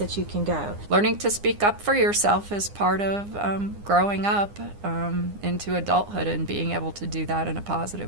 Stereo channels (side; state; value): left; late; 9.8 ms